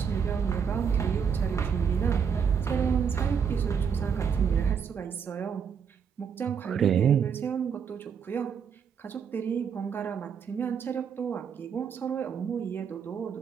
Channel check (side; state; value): left; quieter; 6.9 dB